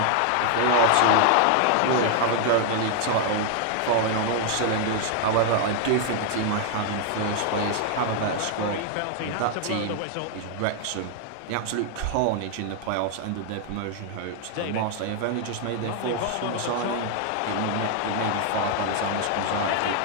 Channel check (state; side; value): different; both; correlation 0.00